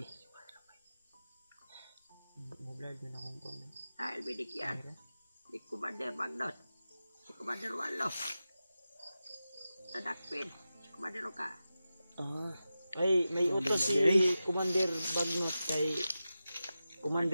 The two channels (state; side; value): inverted; both; correlation -0.93